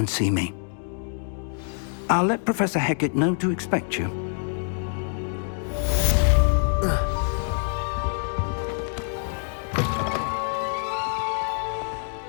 see me. I'll let Professor Hecat know to expect you.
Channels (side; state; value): right; silent; 61 dB below the other